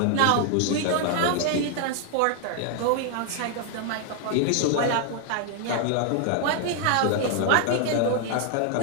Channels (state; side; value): different; both; correlation 0.00